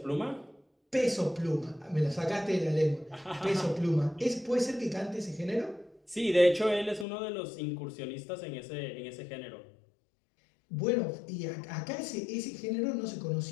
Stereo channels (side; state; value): right; drops out; at 7.1 s